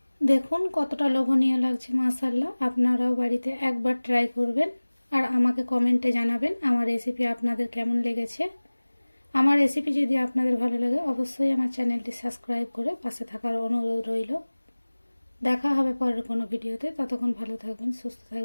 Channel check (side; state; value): both; inverted; correlation -1.00